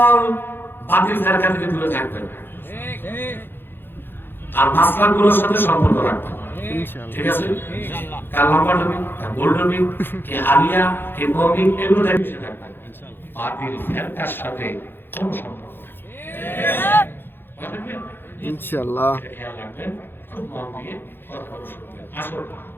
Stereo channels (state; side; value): late; right; 0.10 ms